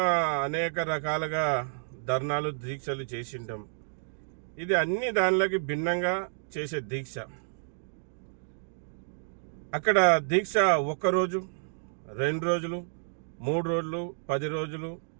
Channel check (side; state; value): left; silent; digital silence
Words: అనేక రకాలుగా ధర్నాలు, దీక్షలు చేసింటాం. ఇది అన్ని దానిలోకి భిన్నంగా చేసే దీక్ష. అక్కడ దీక్ష 1 రోజు, 2 రోజులు, 3 రోజులు, 10 రోజులు,